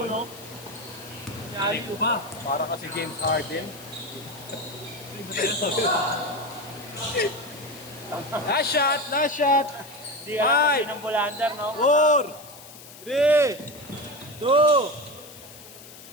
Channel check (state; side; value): noise; left; hiss, 18 dB below the sound